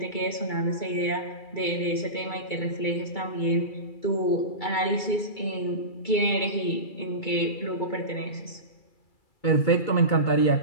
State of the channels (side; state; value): right; late; 2.3 ms